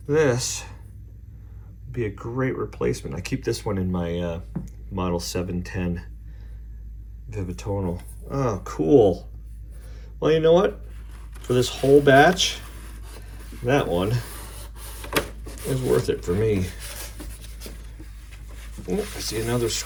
This would be a great replacement. I keep this one in my Model 710 Vivitonal. Oh, cool. Well, you know what? For this whole batch, that one is worth it for me. Oh, I see another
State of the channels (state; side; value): identical; both; correlation 1.00